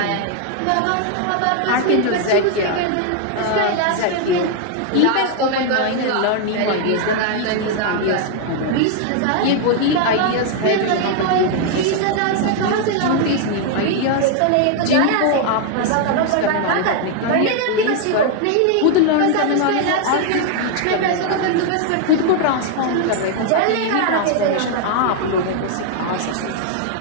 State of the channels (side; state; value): both; different; correlation 0.00